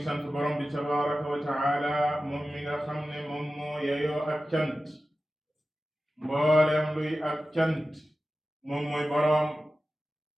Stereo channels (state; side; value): normal; both; correlation 0.94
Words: sant borom bi tabaraka wa taala, moom mi nga xam ne moom moo yeyoo ak cant. mboolem luy ak cant moom mooy borom,